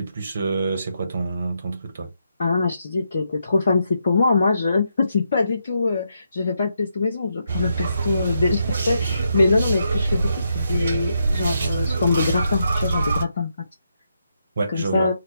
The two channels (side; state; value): both; inverted; correlation -0.80